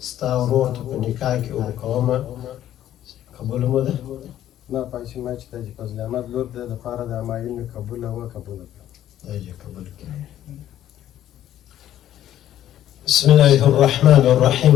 ستا ورور ته په نکاح کې ورکومه قبول مو ده نه پایشي ما چې د فضل احمد لور د لپاره د همایون قبول او قبول دا یې قبول کړئ بسم الله الرحمن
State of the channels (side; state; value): right; quieter; 12.0 dB